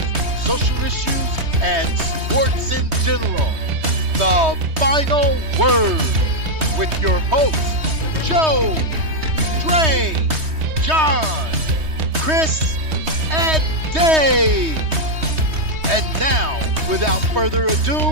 social issues, and sports in general. The Final Word with your hosts, Joe, Dre, John, Chris, and Dave. And now, without further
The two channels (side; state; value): left; late; 3.2 ms